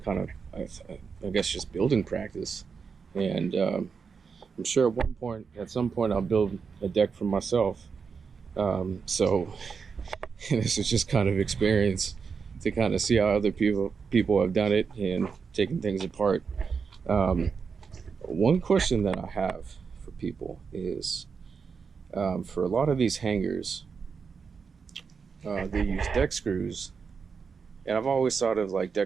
of I guess just building practice. And I'm sure at some point I'll build a deck for myself. So this is just kind of experience to kind of see how other people have done it and taking things apart. One question that I have for people is, for a lot of these hangers, they use deck screws, and I've always thought of like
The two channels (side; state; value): left; quieter; 5.7 dB